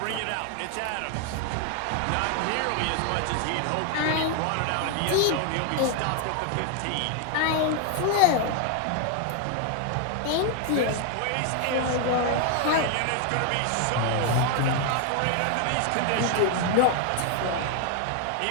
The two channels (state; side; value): different; both; correlation 0.00